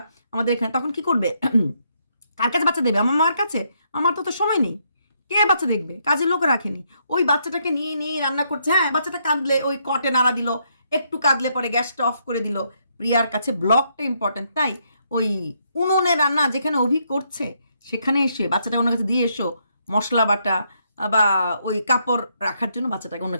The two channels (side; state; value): both; inverted; correlation -0.75